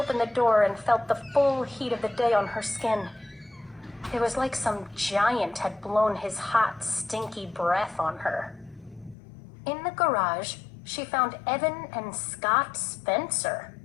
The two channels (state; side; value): drops out; right; at 9.2 s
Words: the door and felt the full heat of the day on her skin. It was like some giant had blown his hot, stinky breath on her. In the garage, she found Evan and Scott Spencer.